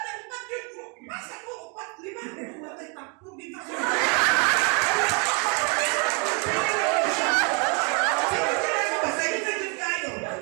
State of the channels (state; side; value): quieter; left; 32.6 dB